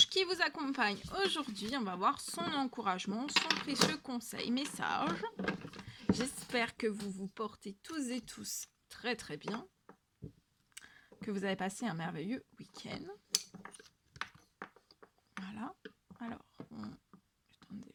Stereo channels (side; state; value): both; identical; correlation 1.00